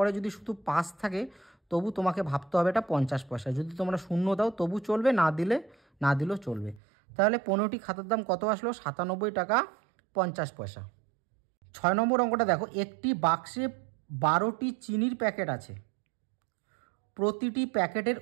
যদি শুধু 5 থাকে তবু তোমাকে ভাবতে হবে এটা 50 পয়সা। যদি তোমরা শূন্য দাও তবু চলবে, না দিলেও চলবে। তাহলে 15টি খাতার দাম কত আসলো? 97 টাকা 50 পয়সা। 6 নম্বর অঙ্কটা দেখো, একটি বাক্সে 12টি চিনির প্যাকেট আছে, প্রতিটি প্যাকেটের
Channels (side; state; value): left; drops out; at 6.8 s